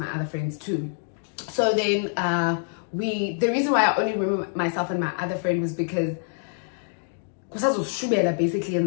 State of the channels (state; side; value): silent; right; digital silence